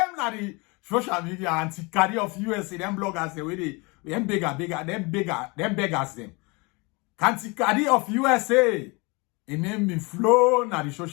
na the social media anti-Kadi of USA, them bloggers the way they them beggars them. Anti-Kadi of USA, in name be flow na the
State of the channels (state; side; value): quieter; right; 27.6 dB